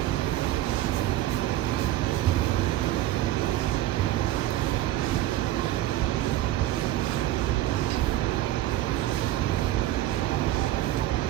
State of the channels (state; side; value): quieter; left; 14.2 dB